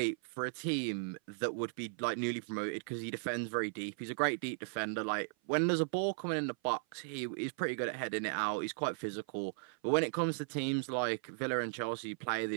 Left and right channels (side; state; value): left; silent; 53 dB below the other